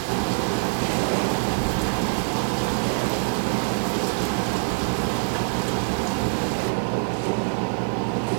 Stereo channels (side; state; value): left; silent; digital silence